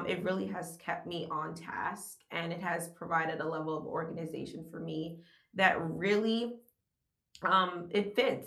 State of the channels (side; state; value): both; identical; correlation 1.00